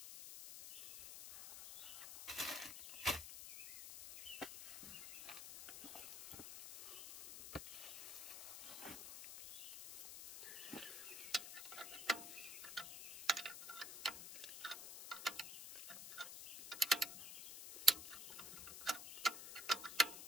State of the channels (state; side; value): noise; left; hiss, 9 dB below the sound